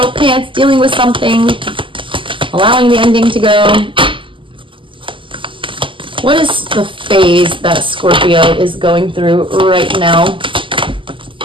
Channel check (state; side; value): late; left; 0.25 ms